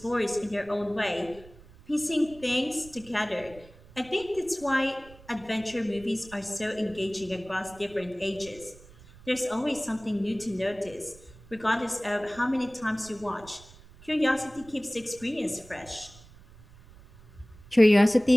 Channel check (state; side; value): noise; right; rumble, 22 dB below the sound